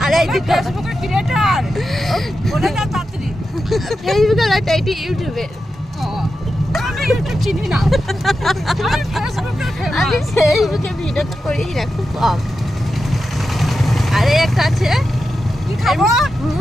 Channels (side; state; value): both; normal; correlation 0.90